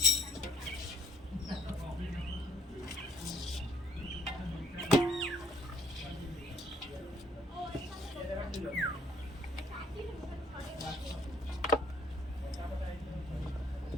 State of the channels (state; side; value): normal; both; correlation 0.65